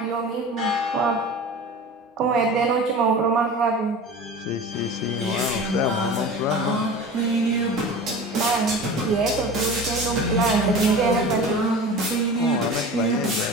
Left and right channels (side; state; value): both; normal; correlation 0.36